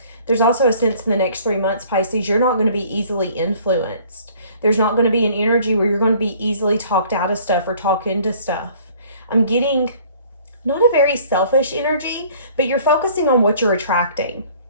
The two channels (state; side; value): inverted; both; correlation -0.54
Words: There's also a sense in the next 3 months, Pisces, you're not going to be easily influenced. There's not going to be an energy where you're going to be easily talked out of stuff or talked into stuff. I'm getting not a very selfish energy, but you're focusing on what you're attracting.